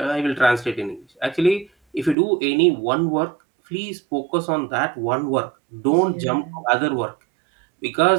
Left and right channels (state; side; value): drops out; left; at 2.1 s